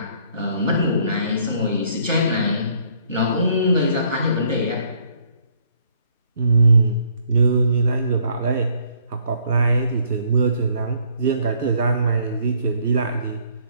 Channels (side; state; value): both; inverted; correlation -0.64